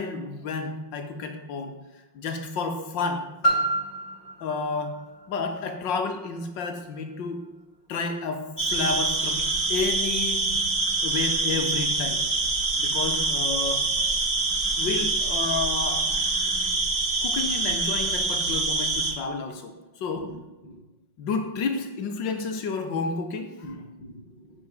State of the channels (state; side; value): late; right; 5.5 ms